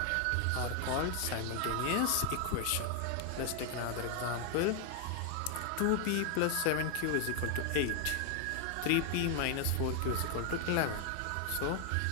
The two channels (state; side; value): different; both; correlation 0.00